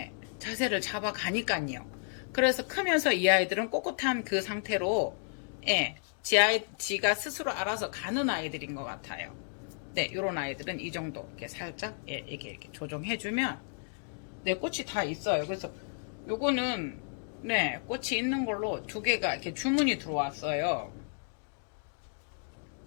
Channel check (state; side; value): silent; right; digital silence